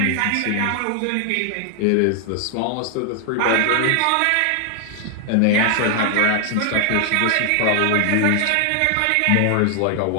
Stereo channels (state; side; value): different; both; correlation 0.00